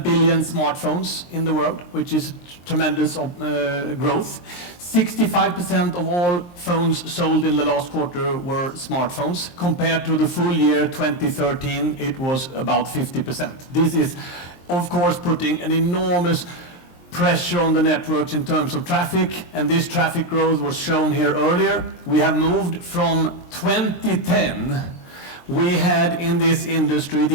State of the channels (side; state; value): right; late; 23 ms